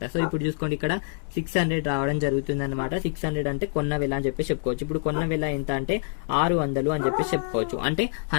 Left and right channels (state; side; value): silent; right; digital silence